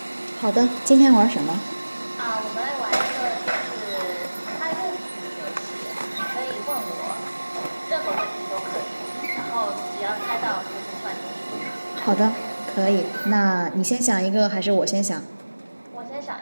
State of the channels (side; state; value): both; inverted; correlation -1.00